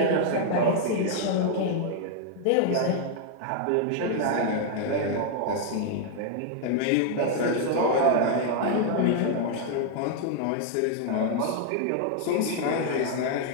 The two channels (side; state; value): both; different; correlation 0.00